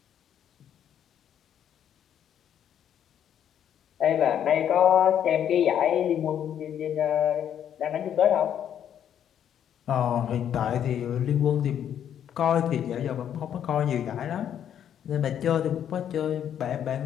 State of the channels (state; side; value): quieter; right; 9.6 dB